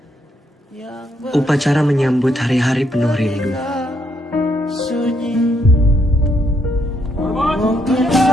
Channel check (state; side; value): normal; both; correlation 0.75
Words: upacara menyambut hari-hari penuh rindu. sunyi. Mungkin